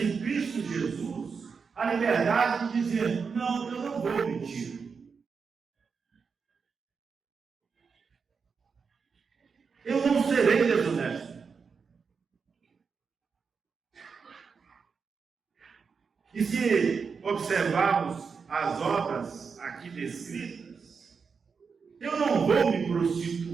Cristo Jesus a liberdade de dizer: não, eu não vou mentir. Eu não serei desonesto. E se observarmos as obras aqui descritas, eu não vou me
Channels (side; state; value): left; quieter; 5.5 dB